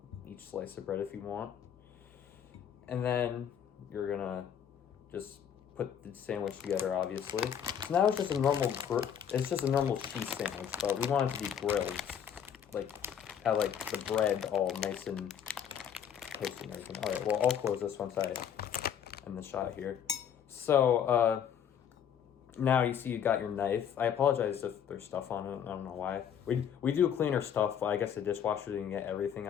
each slice of bread if you want. And then you're gonna just put the sandwich together, obviously. So now it's just a normal cheese sandwich, but we want it to be grilled. Like, have like the bread all nice and toasty and everything. All right, well, I'll close this once I end the shot here. So, now you see you got your knife. I apologize if there's stuff on it. I don't know why. We do clean our stuff. I guess the dishwasher didn't get everything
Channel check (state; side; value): quieter; right; 8.6 dB